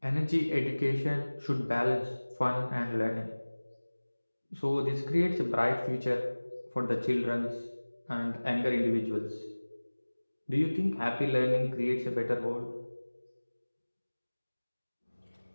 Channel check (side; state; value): both; inverted; correlation -1.00